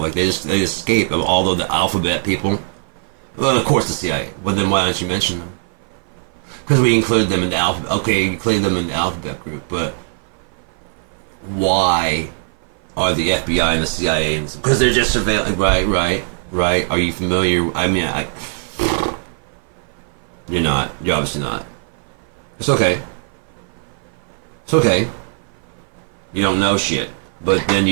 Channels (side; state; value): left; silent; 56 dB below the other